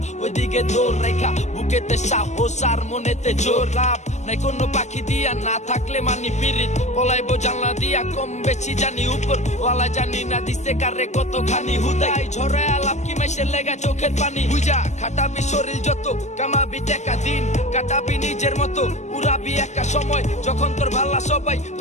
ওইদিকে দৌড় রেখা বুকেতে সাহস আর মনেতে জোর। লাভ নাই কোনো পাখি দিয়া না থাকলে মানি পিরিত পলাইবো জানলা দিয়া কম বেশি জানি উপর ওয়ালা জানি না দিছে কারে কতখানি হুদাই ঝরে আলাপ কি মেশে লেগা চোখের পানি বুঝা খাটাবি শরীর যত কামাবি টাকা দিন কাটাবি নিজের মতো উড়াবি একা সময় যখন তোর ভাল্লা সবাই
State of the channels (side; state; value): right; late; 0.33 ms